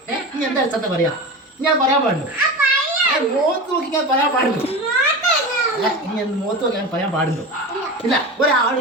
നീ എന്താ അടിസ്ഥാനത്തെ പറയാ? ഞാൻ പറയാൻ പാടുള്ളൂ. മുഖത്ത് നോക്കി ഞാൻ പറയാൻ പാടുള്ളൂ. ഇനി മുഖത്ത് നോക്കി ഞാൻ പറയാൻ പാടുള്ളൂ. ഇല്ല, ഒരാൾ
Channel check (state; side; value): normal; both; correlation 0.27